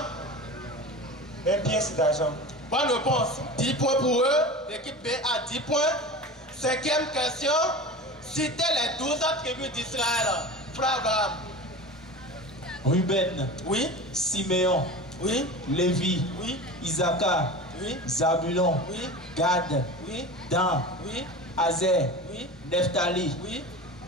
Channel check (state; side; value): normal; both; correlation 0.32